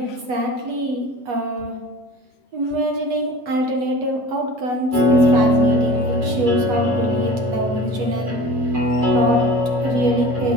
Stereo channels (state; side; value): late; left; 8.2 ms